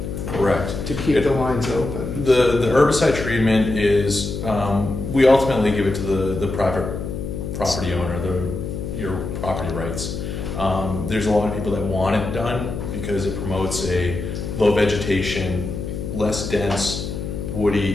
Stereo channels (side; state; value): left; noise; hum, 6 dB below the sound